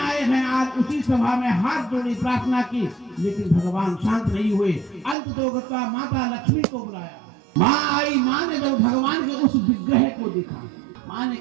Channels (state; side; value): drops out; left; at 5.2 s